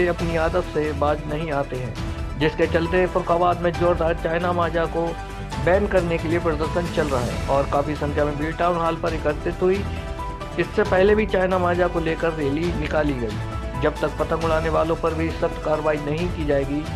अपनी आदत से बाज नहीं आते हैं, जिसके चलते फर्रुखाबाद में जोरदार चाइना माजा को बैन करने के लिए प्रदर्शन चल रहा है और काफ़ी संख्या में भीड़ टाउन हॉल पर एकत्रित हुई। इससे पहले भी चाइना माजा को लेकर रैली निकाली गई। जब तक पतंग उड़ाने वालों पर भी सख्त कार्रवाई नहीं की जाएगी,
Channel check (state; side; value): identical; both; correlation 1.00